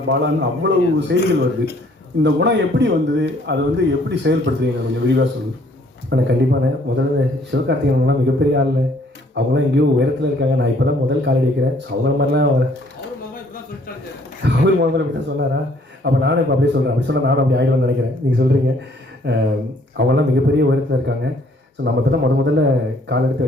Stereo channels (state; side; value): normal; both; correlation 0.62